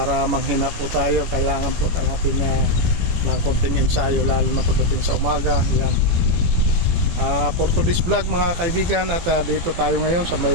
manghina po tayo. Kailangan po natin ng konting ensayo, lalo na pagdating sa umaga. Yan. For today's vlog mga kaibigan, at dito tayo ngayon sa may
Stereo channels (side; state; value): left; late; 18 ms